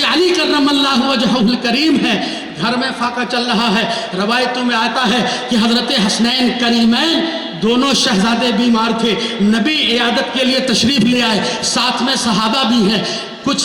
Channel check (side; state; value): both; identical; correlation 1.00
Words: علی کرم اللہ وجہہ الکریم ہے، گھر میں فاقہ چل رہا ہے، روایتوں میں آتا ہے کہ حضرت حسنین کریمین دونوں شہزادے بیمار تھے، نبی عیادت کے لیے تشریف لے آئے، ساتھ میں صحابہ بھی ہیں۔ کچھ